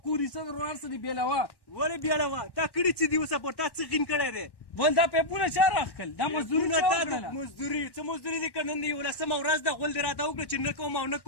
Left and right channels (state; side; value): late; right; 1.1 ms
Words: کوري څه در ورار څه دي بېلوه ولې بیاړه تا کړي چې دي اوسه پور تا څه غین کړی دی بل دا پیپونه چا راخکل دا مزدوري چا وکړله مزدوري څه مزدوري دي که نن د یولسمه ورځ ده غول دې راته وکړه چې نه کوم او نه